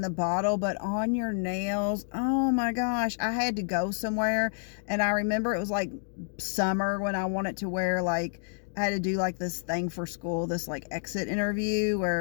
the bottle, but on your nails, oh my gosh, I had to go somewhere, and I remember it was like summer when I wanted to wear, like, I had to do like this thing for school, this like exit interview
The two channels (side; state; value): right; silent; digital silence